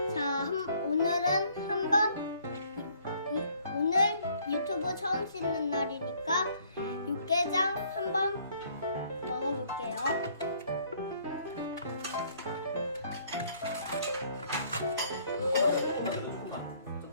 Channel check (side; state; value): both; inverted; correlation -0.62